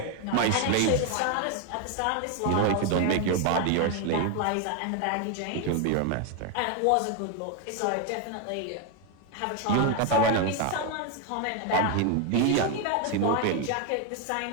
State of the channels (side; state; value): both; different; correlation 0.01